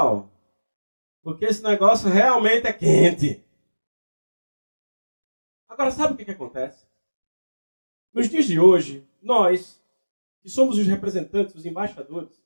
Porque esse negócio realmente é quente. Agora, sabe o que acontece? Nos dias de hoje, nós, que somos os representantes, os embaixadores,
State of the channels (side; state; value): both; inverted; correlation -1.00